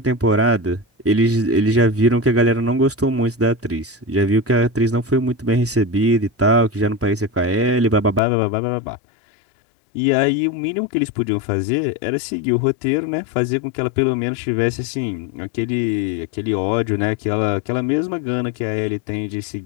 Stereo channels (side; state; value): right; drops out; at 8.2 s